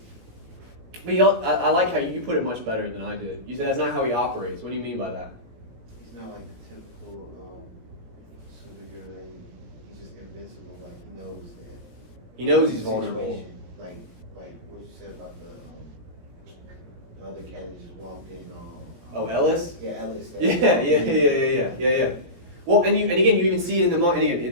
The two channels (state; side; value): late; left; 17 ms